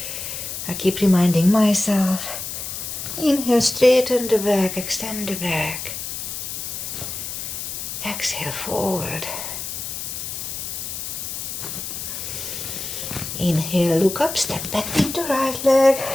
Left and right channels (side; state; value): left; noise; hiss, 6 dB below the sound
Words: I keep reminding myself. Inhale, straighten the back, extend the back. Exhale, forward. Inhale, look up, step back with the right leg.